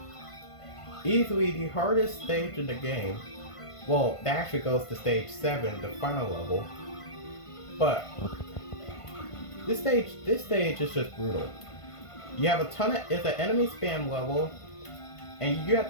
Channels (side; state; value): right; late; 1.5 ms